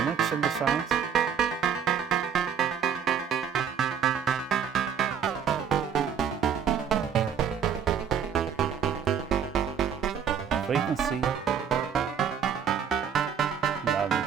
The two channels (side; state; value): left; quieter; 7.8 dB